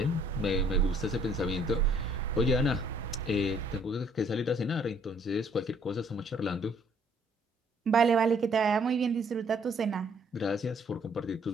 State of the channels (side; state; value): both; normal; correlation 0.63